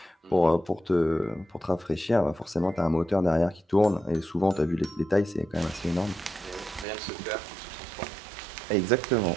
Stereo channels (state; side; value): drops out; left; at 6.9 s